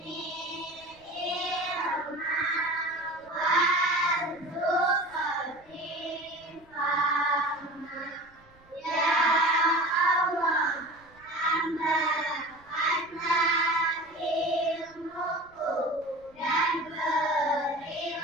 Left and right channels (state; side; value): noise; right; rumble, 29 dB below the sound